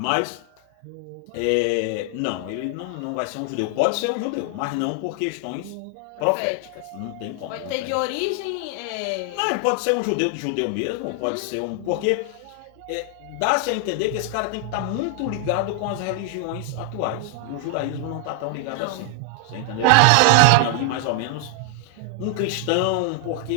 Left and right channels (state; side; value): different; both; correlation 0.00